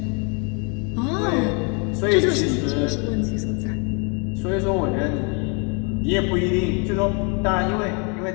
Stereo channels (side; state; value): right; quieter; 35.4 dB